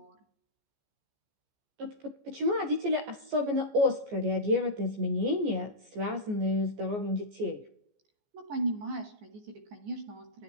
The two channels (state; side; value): late; left; 14 ms